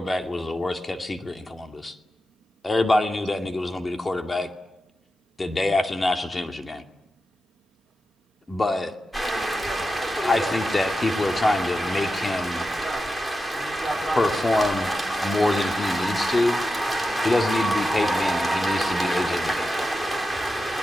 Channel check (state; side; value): normal; both; correlation 0.90